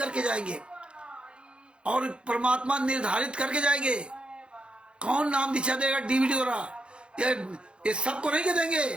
जाएंगे और परमात्मा निर्धारित करके जाएंगे कौन नाम दीक्षा देगा डीवीडी द्वारा। ये सबको नहीं कह देंगे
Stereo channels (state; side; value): late; left; 0.056 ms